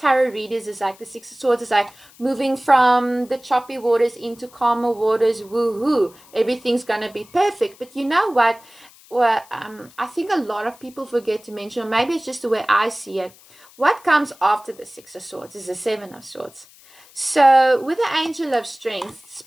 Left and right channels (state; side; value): noise; left; hiss, 25 dB below the sound